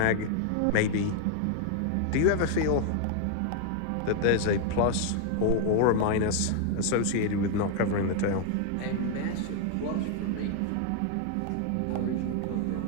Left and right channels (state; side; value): different; both; correlation 0.00